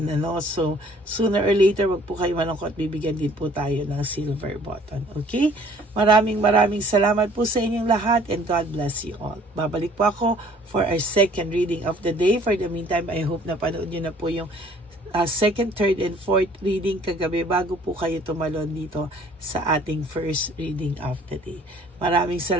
ano. So sooner or later, wag po kayo malungkot, bibigyan din po tayo ng silver button. Okay? Maraming salamat po sa inyong lahat and God bless you all. Babalik po ako for our second reading of the day. For the meantime, I hope na panood nyo na po yung second, third, and fourth reading kagabi bago po kayo tumalon dito sa ating first reading of the day. Maraming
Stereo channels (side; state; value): both; normal; correlation 0.56